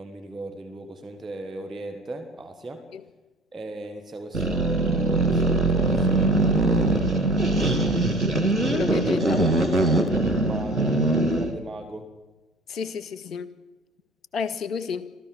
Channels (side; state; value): both; normal; correlation 0.44